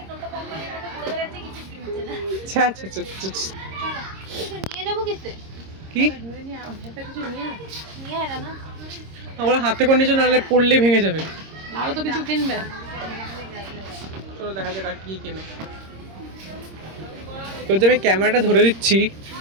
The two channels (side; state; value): left; late; 26 ms